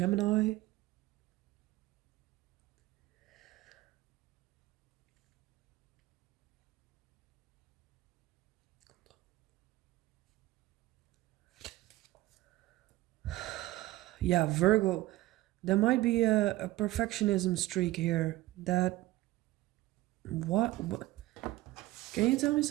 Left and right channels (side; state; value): left; quieter; 17.3 dB